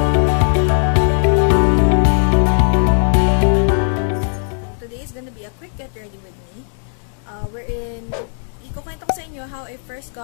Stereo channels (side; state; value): right; silent; 68 dB below the other